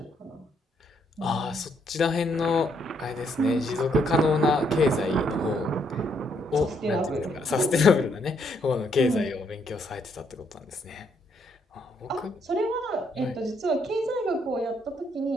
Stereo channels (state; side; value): normal; both; correlation 0.73